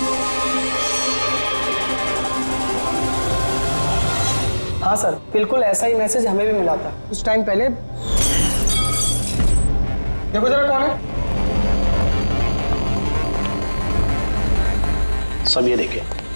हाँ सर, बिल्कुल ऐसा ही मैसेज हमें भी मिला था कुछ टाइम पहले। देखो जरा कौन है। सब ये देखे।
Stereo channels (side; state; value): both; inverted; correlation -1.00